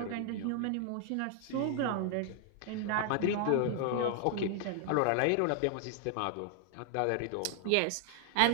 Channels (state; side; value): different; both; correlation 0.00